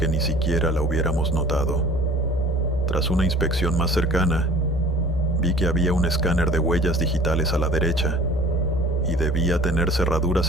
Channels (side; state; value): both; normal; correlation 0.48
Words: ni siquiera la hubiéramos notado. Tras una inspección más cercana, vi que había un escáner de huellas digitales a la derecha, y debía tener